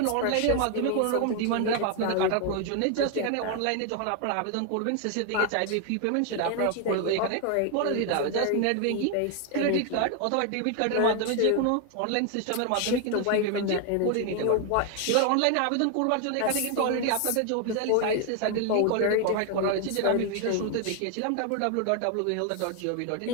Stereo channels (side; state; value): both; different; correlation 0.01